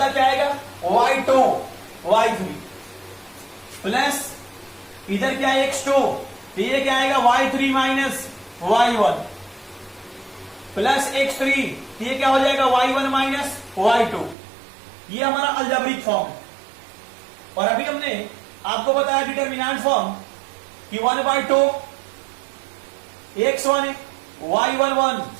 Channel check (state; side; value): drops out; left; at 14.4 s